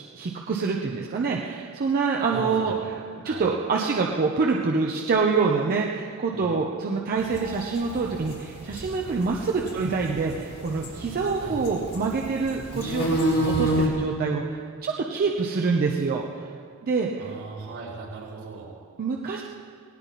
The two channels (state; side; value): quieter; left; 3.7 dB